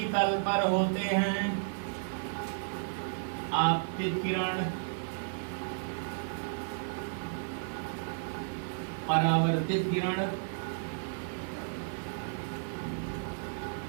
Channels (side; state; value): left; silent; 56 dB below the other